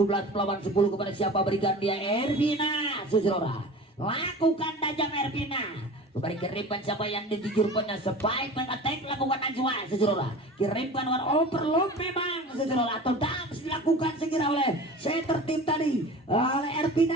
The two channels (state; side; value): normal; both; correlation 0.37